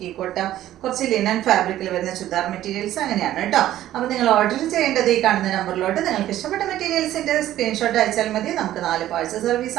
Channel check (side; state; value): left; quieter; 13.3 dB